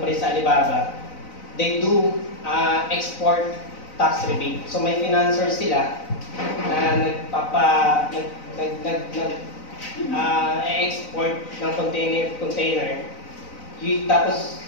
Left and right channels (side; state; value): right; late; 4.0 ms